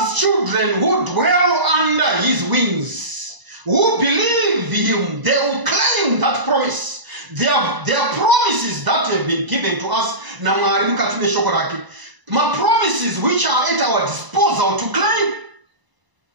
children who dwell under his wings, who believe him, they will claim that promise. There are promises that have been given to us. My promises which are at our disposal to claim.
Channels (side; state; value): left; late; 1.0 ms